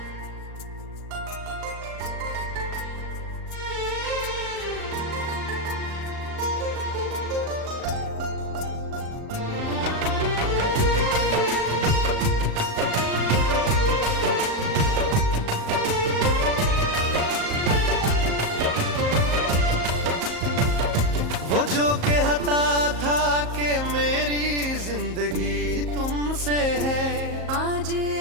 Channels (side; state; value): left; late; 38 ms